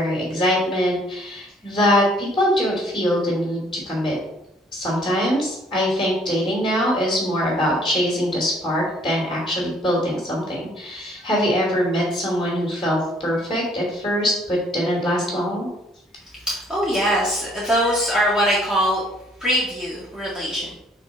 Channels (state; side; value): normal; both; correlation 0.61